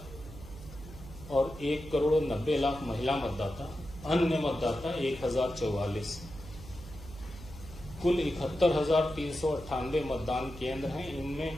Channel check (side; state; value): right; noise; hum, 15 dB below the sound